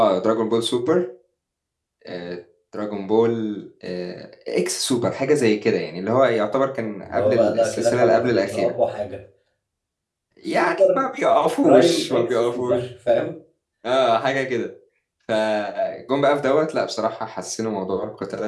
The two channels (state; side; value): identical; both; correlation 1.00